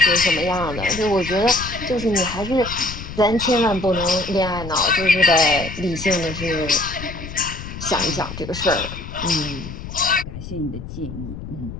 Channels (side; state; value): left; noise; rumble, 10 dB below the sound